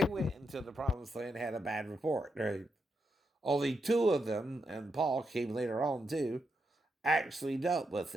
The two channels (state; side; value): normal; both; correlation 0.83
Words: went into the promised land, had a bad report. Right? Only two of them, and Paul came later on too, actually dealt with